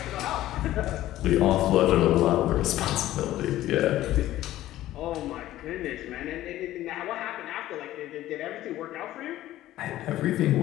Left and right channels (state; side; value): quieter; right; 14.5 dB